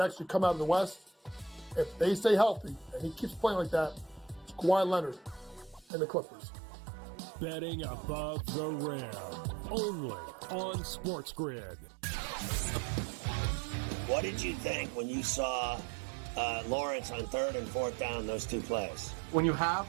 actually come out of the West, if they stay healthy, and he keeps playing like that, it's Kawhi Leonard and the Clippers. Betting above the rim. Only on SportsGrid. What did you think when you saw Lawrence on 3rd and 4th down, those two plays? When you have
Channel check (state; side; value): drops out; left; at 5.9 s